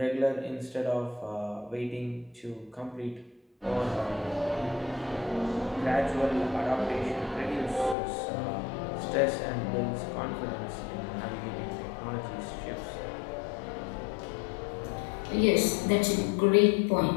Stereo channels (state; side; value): drops out; right; at 8.0 s